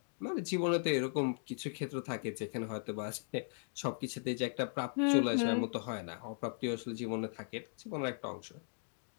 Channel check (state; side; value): silent; right; digital silence